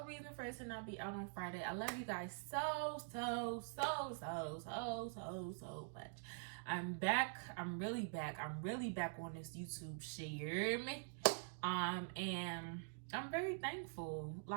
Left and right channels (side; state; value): left; silent; digital silence